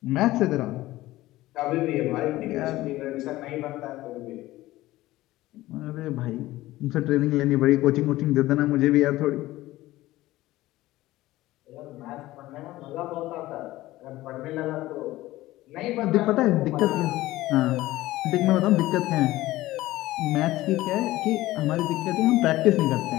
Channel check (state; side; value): quieter; right; 17.0 dB